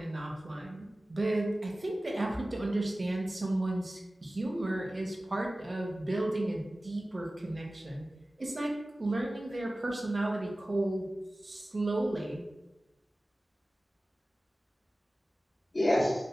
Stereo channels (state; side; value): normal; both; correlation 0.96